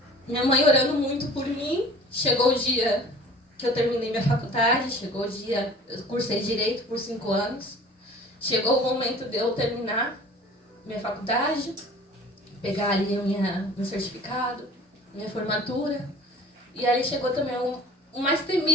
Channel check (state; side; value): normal; both; correlation 0.46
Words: minha mãe orando muito por mim, chegou o dia que eu terminei minha faculdade, chegou o dia, eu cursei Direito por 5 anos. Chegou o momento de eu terminar minha faculdade, pegar ali meu certificado, minha formatura. E ali chegou também o mais